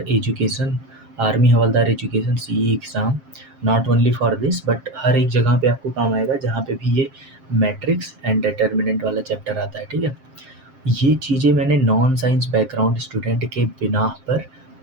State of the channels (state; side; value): late; left; 7.6 ms